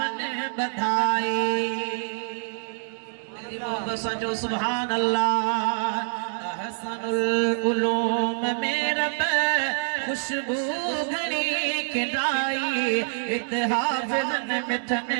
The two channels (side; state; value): left; silent; digital silence